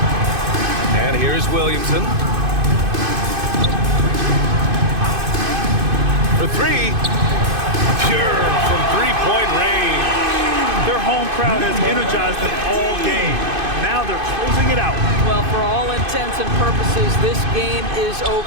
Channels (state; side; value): late; left; 2.5 ms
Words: And here's Williamson. For 3. Pure from 3-point range. Their home crowd has energized them all game. Now they're closing it out. Well, for all intents and purposes, this game is